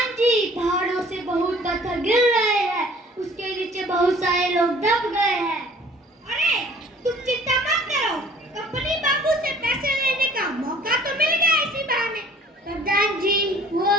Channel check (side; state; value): both; normal; correlation 0.52